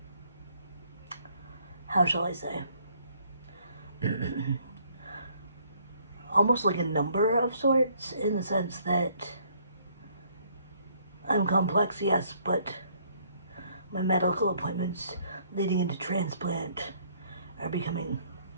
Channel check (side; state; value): both; inverted; correlation -0.65